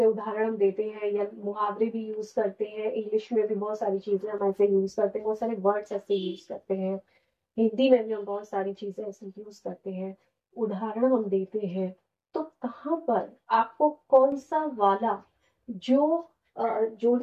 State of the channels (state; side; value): identical; both; correlation 1.00